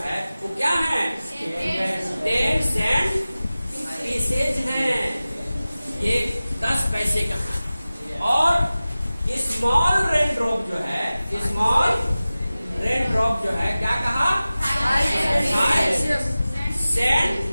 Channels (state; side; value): inverted; both; correlation -0.96